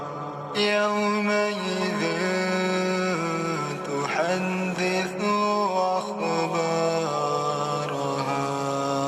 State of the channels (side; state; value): both; identical; correlation 1.00